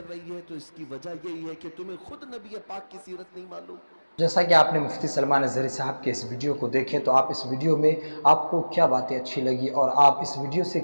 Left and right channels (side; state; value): both; inverted; correlation -1.00